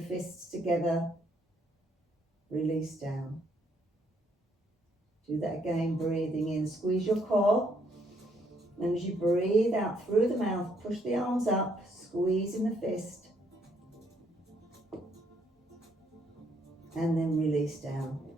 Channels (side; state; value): both; normal; correlation 0.70